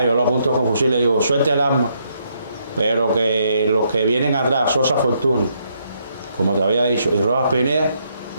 yo lo apunto con fusil y le digo, suelte el arma, pero que los que vienen atrás, Sosa Fortuny, como te había dicho, y Rojas Pineda,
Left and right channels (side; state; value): both; inverted; correlation -0.74